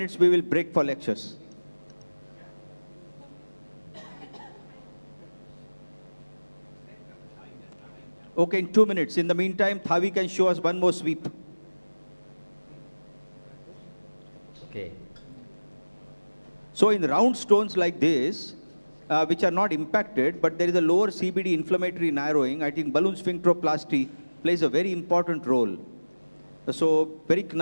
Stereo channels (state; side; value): inverted; both; correlation -1.00